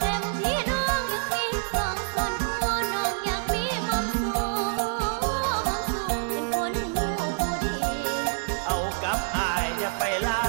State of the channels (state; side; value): silent; left; 60 dB below the other